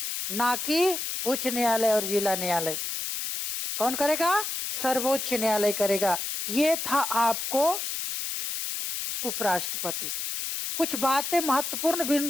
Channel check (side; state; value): left; noise; hiss, 4 dB below the sound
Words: ना कि उच्च न्यायालय और जिला न्यायालय। कौन करेगा? सर्वोच्च न्यायालय करेगा। ये था आपको उपराष्ट्रपति। कुछ बातें महत्वपूर्ण